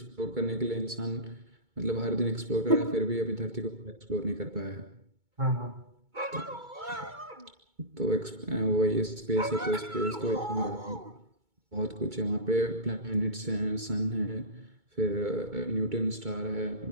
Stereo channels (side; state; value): left; late; 2.2 ms